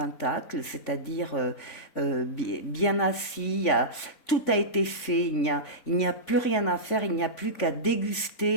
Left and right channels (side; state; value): right; late; 3.5 ms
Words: c'est-à-dire bien assis, tout a été fait, il n'y a plus rien à faire, il n'y a plus qu'à